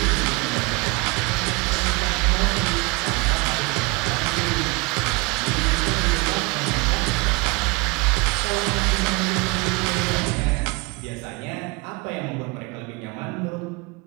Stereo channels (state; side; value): quieter; left; 25.1 dB